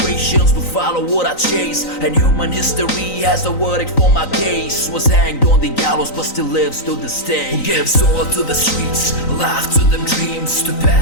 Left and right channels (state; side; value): late; right; 3.9 ms